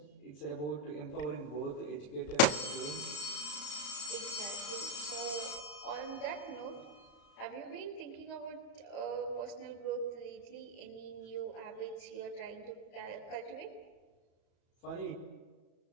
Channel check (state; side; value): late; right; 34 ms